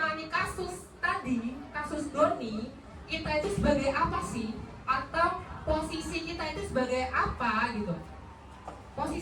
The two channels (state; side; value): identical; both; correlation 1.00